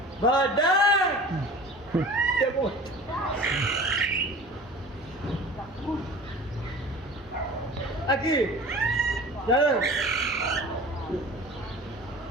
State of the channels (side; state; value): both; normal; correlation 0.41